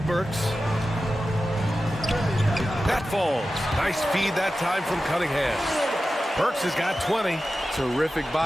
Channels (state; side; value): normal; both; correlation 0.93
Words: Burks. That falls. Nice feed that time from Cunningham. Burks has got 20. Terrific